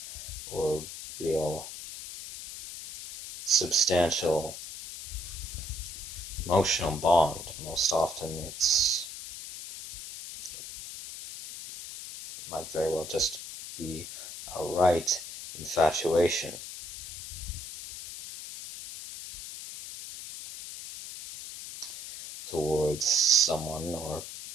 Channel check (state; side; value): noise; left; hiss, 10 dB below the sound